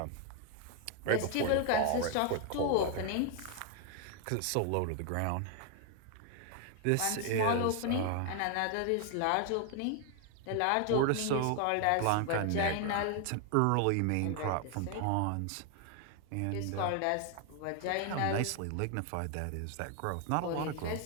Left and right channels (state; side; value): different; both; correlation 0.00